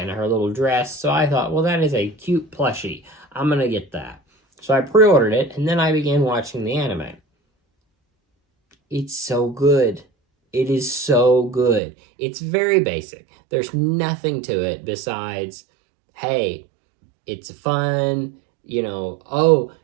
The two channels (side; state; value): left; drops out; at 11.8 s